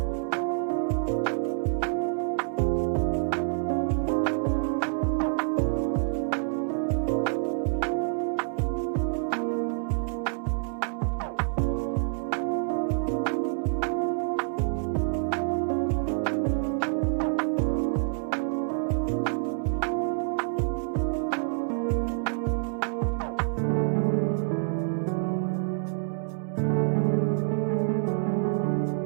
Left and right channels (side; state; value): left; silent; digital silence